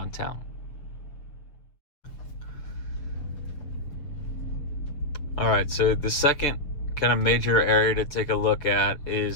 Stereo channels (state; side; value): late; right; 6.9 ms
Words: town. All right, so the second kind of major area to take a look at